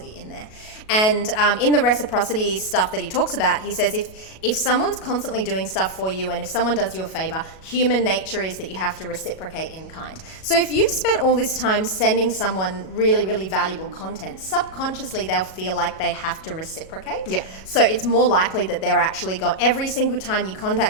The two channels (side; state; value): right; late; 37 ms